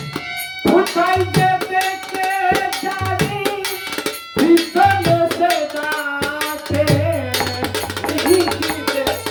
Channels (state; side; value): identical; both; correlation 1.00